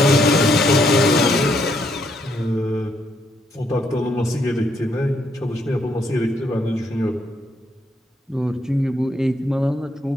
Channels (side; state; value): both; normal; correlation 0.74